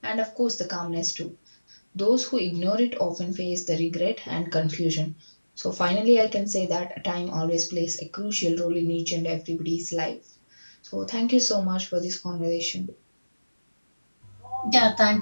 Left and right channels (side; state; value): both; inverted; correlation -1.00